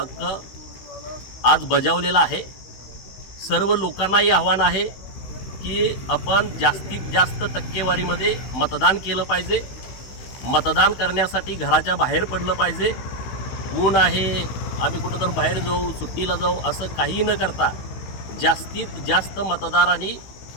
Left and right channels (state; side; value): late; right; 16 ms